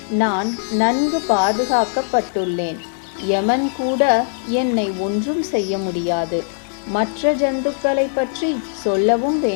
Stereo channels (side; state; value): right; silent; 66 dB below the other